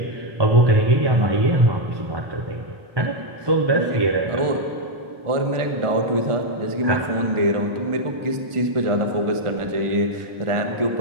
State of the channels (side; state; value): left; late; 1.4 ms